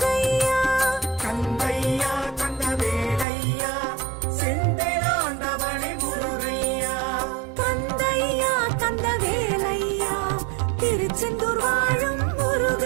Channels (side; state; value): left; drops out; at 3.2 s